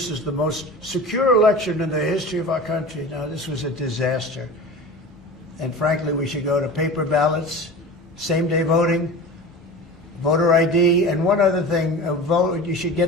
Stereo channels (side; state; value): both; normal; correlation 0.33